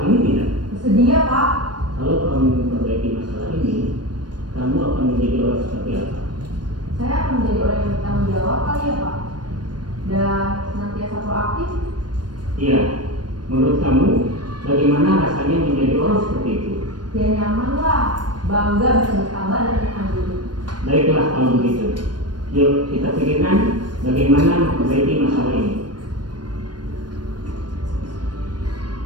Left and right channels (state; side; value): late; left; 0.70 ms